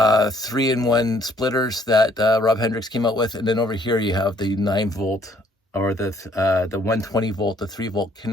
splitters that Rob Hendricks came out with. And then over here you have the 9-volt or the 120 volt, the 3-volt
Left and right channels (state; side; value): normal; both; correlation 0.63